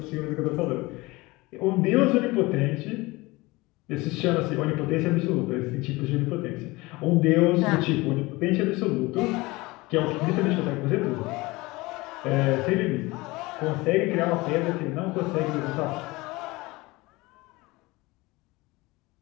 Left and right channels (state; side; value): quieter; right; 22.1 dB